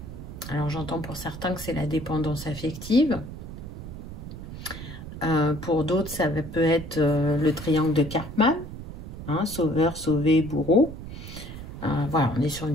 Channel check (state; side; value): noise; right; rumble, 11 dB below the sound